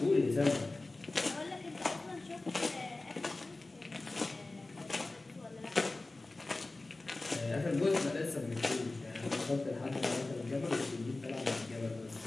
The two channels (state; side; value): quieter; right; 3.1 dB